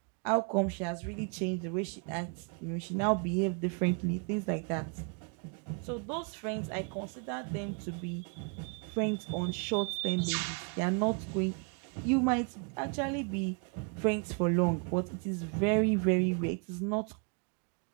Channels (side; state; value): left; quieter; 38.1 dB